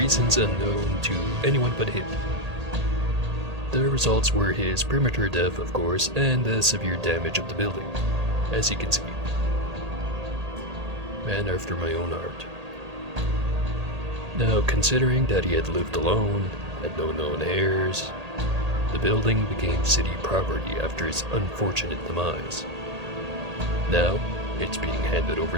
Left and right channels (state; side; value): late; left; 1.8 ms